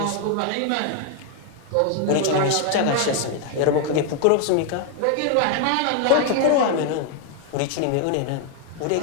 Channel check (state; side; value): different; both; correlation 0.00